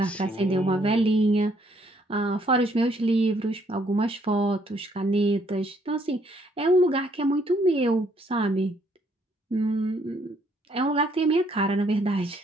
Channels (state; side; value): normal; both; correlation 0.68